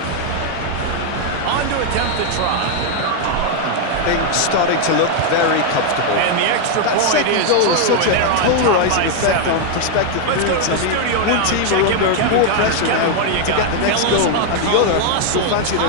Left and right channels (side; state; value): both; different; correlation 0.00